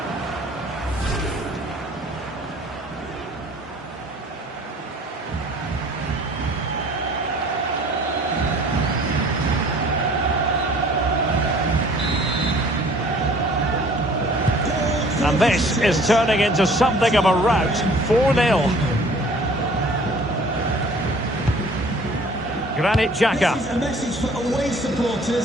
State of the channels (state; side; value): normal; both; correlation 0.52